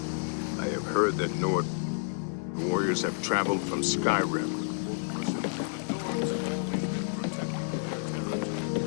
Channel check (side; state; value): right; silent; digital silence